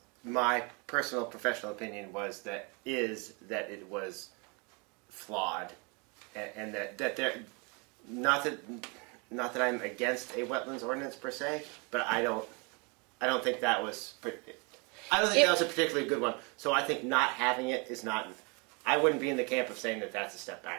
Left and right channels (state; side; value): quieter; left; 31.8 dB